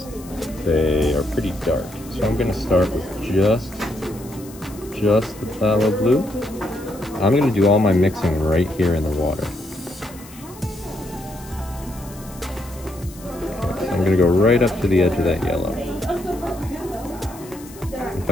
they are pretty dark. So I'm going to start with just the phthalo blue. I'm going to do all my mixing right here in the water. Okay, so I'm going to go right up to the edge of that yellow. If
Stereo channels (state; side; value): noise; left; hiss, 20 dB below the sound